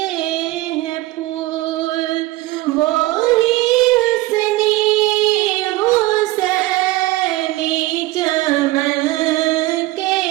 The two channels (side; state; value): left; quieter; 18.6 dB